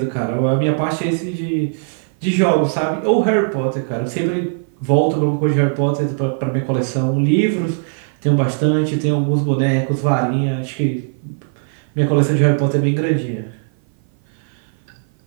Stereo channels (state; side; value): silent; left; 56 dB below the other